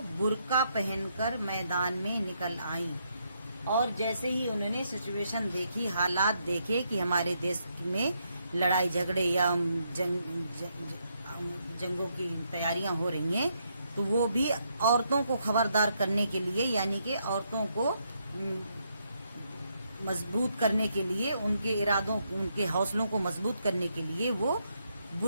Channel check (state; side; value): inverted; both; correlation -0.77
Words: برقع پہن کر میدان میں نکل آئیں، اور جیسے ہی انہوں نے سچویشن دیکھی، حالات دیکھے کہ ہمارے دیش میں لڑائی جھگڑے یا جنگوں کی تیاریاں ہو رہی ہیں، تو وہ بھی عورتوں کو خبردار کرنے کے لیے، یعنی کہ عورتوں کو مضبوط کرنے کے لیے، ان کے ارادوں، ان کے حوصلوں کو مضبوط کرنے کے لیے وہ